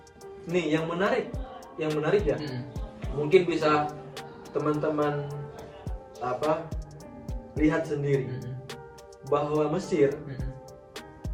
Nih yang menarik ya. Mungkin bisa teman-teman lihat sendiri bahwa Mesir,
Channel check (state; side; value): identical; both; correlation 1.00